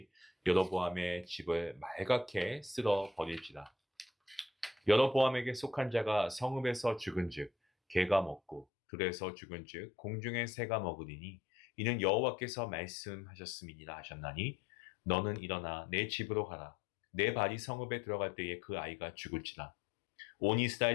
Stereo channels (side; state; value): right; drops out; at 8.7 s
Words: 여로보암의 집을 말갛게 쓸어버릴지라. 여로보암에게 속한 자가 성읍에서 죽은즉 개가 먹고 들에서 죽은즉 공중의 새가 먹으리니 이는 여호와께서 말씀하셨음이니라 하셨나니 너는 일어나 내 집으로 가라. 내 발이 성읍에 들어갈 때에 그 아이가 죽을지라. 온